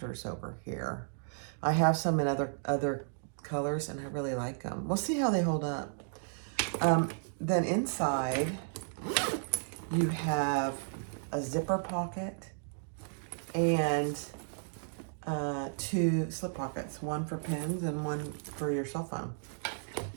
over here. I have some in other colors, and I really like them. We'll see how they hold up. Then inside, you have a zipper pocket and two slip pockets, one for pens and one for your cell phone.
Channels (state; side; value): silent; left; digital silence